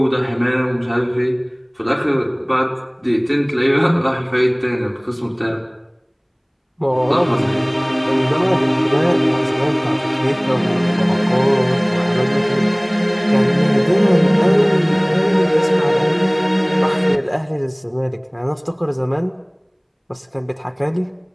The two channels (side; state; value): both; identical; correlation 1.00